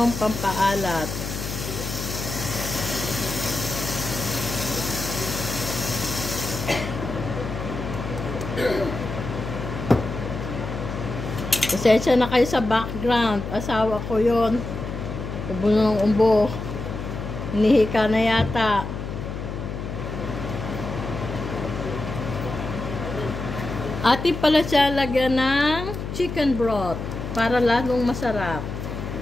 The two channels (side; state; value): left; noise; hum, 6 dB below the sound